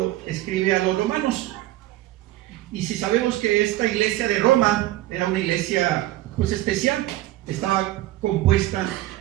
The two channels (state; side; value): quieter; left; 15.9 dB